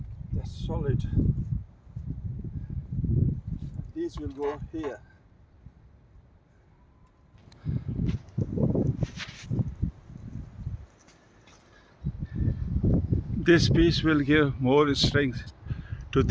That's solid. These will go here. This piece will give more strength to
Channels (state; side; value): identical; both; correlation 1.00